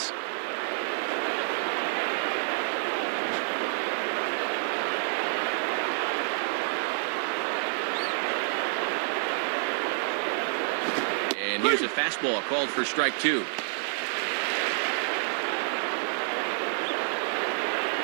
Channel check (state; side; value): silent; left; 59 dB below the other